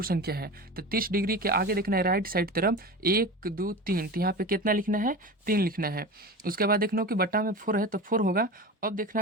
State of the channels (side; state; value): both; normal; correlation 0.30